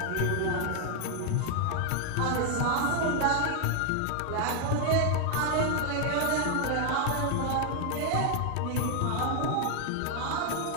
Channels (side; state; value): both; different; correlation 0.01